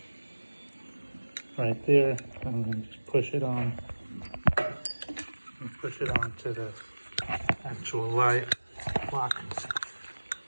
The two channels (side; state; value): both; inverted; correlation -1.00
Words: right there. I'm going to just push it on and push it onto the actual lock.